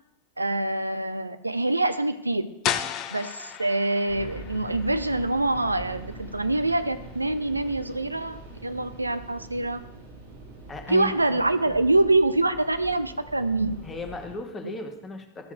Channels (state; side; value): inverted; both; correlation -0.84